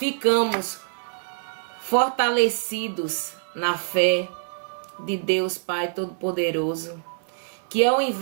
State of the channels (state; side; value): silent; left; digital silence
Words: fortalecidos na fé de Deus Pai Todo-Poderoso, que ao